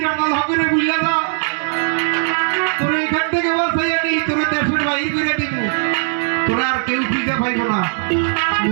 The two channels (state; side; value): silent; left; 61 dB below the other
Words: আনাল হকরে বুঝলা যা তোর এখান থেকে বাঁচাইয়া নেই তোর দেশের বাহির করে দিব তোরা আর কেউ খুঁজে পাইব না